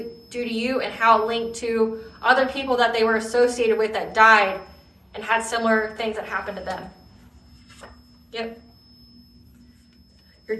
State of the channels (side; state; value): both; identical; correlation 1.00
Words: to you and how it linked to other people that they were associated with that died and had similar things that happened to them. Yep. Your